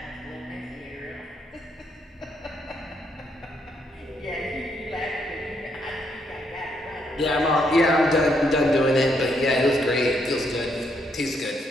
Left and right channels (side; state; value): both; normal; correlation 0.75